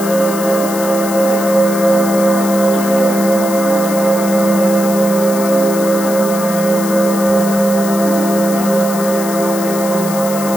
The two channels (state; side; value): noise; left; hiss, 10 dB below the sound